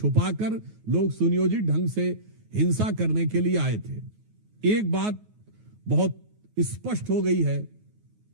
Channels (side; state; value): left; late; 9.4 ms